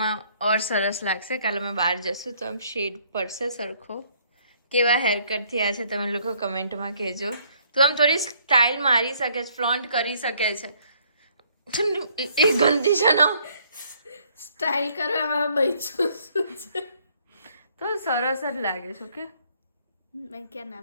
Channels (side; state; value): both; inverted; correlation -0.64